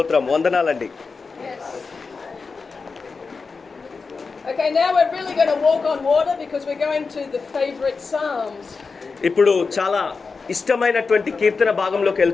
వందనాలండి. Okay, now we're really going to walk on water because we're going to the favorite Psalms. ఇప్పుడు చాలా ఇష్టమైనటువంటి కీర్తన భాగంలోకి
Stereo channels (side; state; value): right; quieter; 4.6 dB